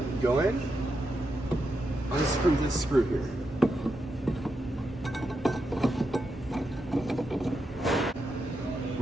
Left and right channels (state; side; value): normal; both; correlation 0.85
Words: go in, unscrew this screw here.